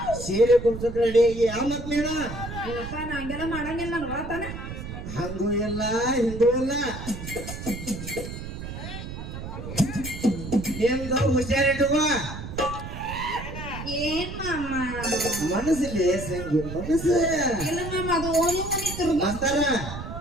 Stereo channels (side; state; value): right; noise; rumble, 9 dB below the sound